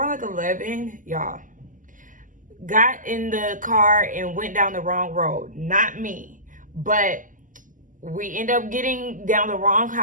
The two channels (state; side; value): late; left; 0.38 ms